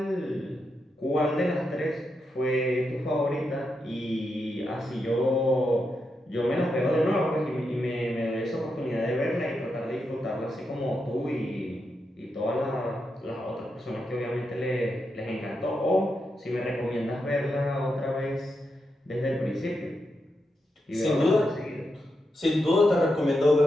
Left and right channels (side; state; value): both; normal; correlation 0.85